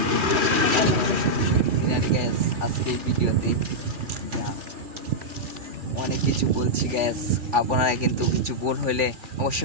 গ্যাস। আজকে ভিডিওতে অনেক কিছু বলছি গ্যাস, আপনারা কিন্তু কিছু ভুল হইলে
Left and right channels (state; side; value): late; left; 2.4 ms